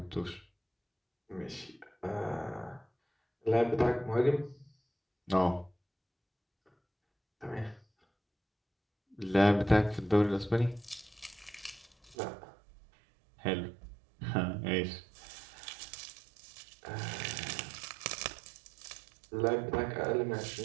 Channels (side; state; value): left; drops out; at 12.2 s